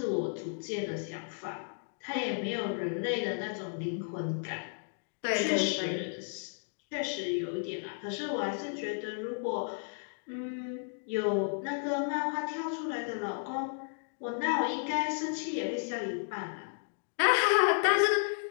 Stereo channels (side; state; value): right; silent; digital silence